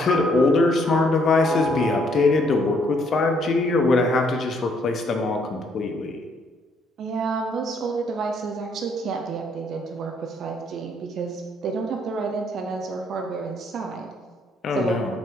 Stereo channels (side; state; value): both; normal; correlation 0.68